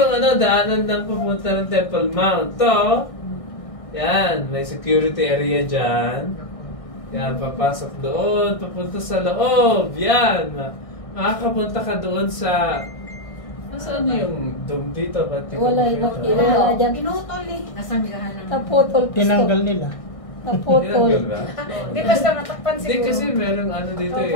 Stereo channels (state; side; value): late; right; 1.6 ms